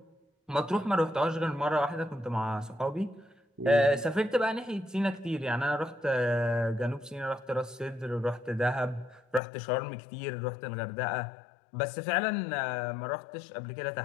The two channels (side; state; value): right; drops out; at 9.4 s